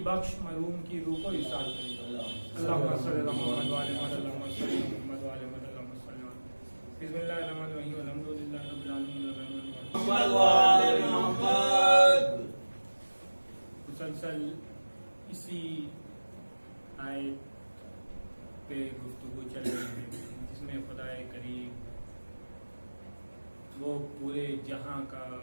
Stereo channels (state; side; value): inverted; both; correlation -1.00